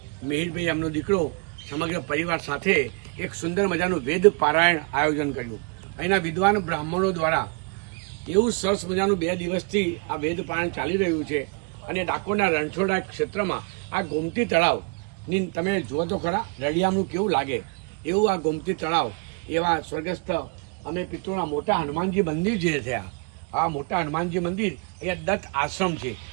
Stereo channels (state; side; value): quieter; left; 33.0 dB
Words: મિહિરભાઈ એમનો દીકરો સમગ્ર પરિવાર સાથે એક સુંદર મજાનું વેદ પારાયણ આયોજન કર્યું। અહીંના વિદ્વાન બ્રાહ્મણો દ્વારા એવું સરસ મજાનું 2 દિવસથી આ વેદ પારાયણ ચાલી રહ્યું છે અને ડાકોરના રણછોડના ક્ષેત્રમાં આ ગોમતી તળાવ ની તમે જુઓ તો ખરા, રળિયામણું કેવું લાગે એવું આ ગોમતી તળાવ, એવા સ્વર્ગસ્થ અમે પિતૃના મોટા હનુમાનજી મંદિર જે થયા, આ મોટા હનુમાનજી મંદિર અહીંયા દત્ત આશ્રમ છે